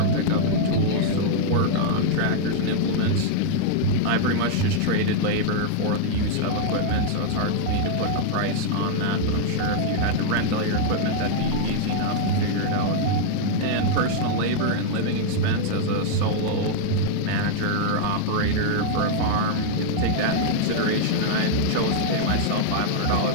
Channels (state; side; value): different; both; correlation 0.00